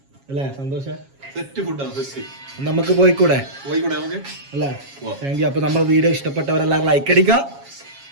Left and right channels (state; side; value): late; left; 7.3 ms